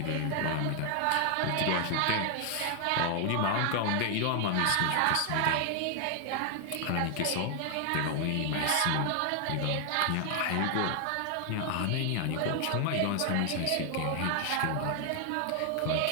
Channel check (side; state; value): both; different; correlation 0.00